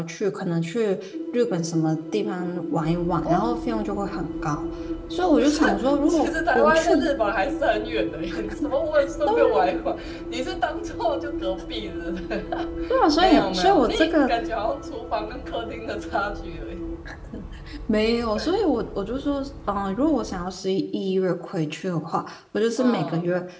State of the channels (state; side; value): identical; both; correlation 1.00